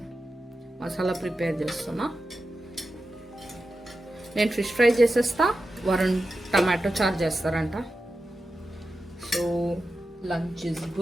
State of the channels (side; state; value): both; normal; correlation 0.91